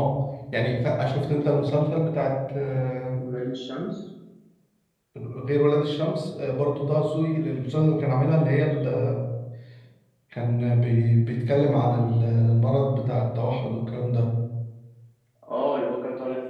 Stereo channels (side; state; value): both; identical; correlation 1.00